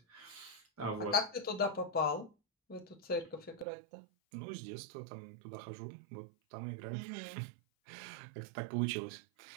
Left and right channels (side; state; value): left; drops out; at 3.7 s